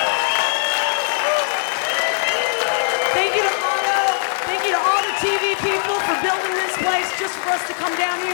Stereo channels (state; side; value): silent; right; 66 dB below the other